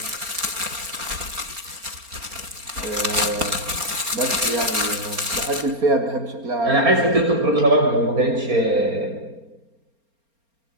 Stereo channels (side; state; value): left; late; 4.3 ms